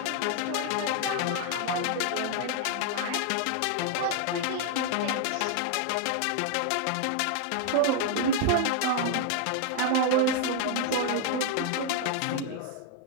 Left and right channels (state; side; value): different; both; correlation 0.00